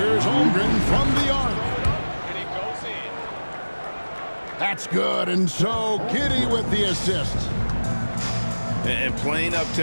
Holmgren from the arc. That's good, and so Giddey with the assist. And playing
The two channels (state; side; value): inverted; both; correlation -1.00